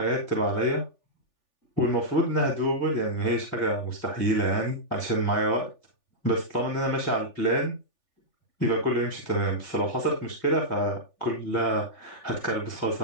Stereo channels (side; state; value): right; late; 3.4 ms